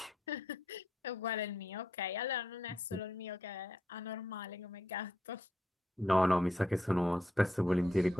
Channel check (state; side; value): normal; both; correlation 0.78